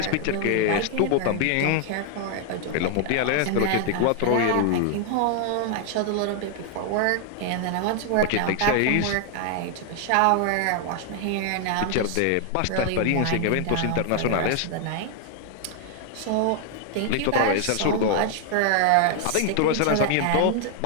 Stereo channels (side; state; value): both; different; correlation 0.00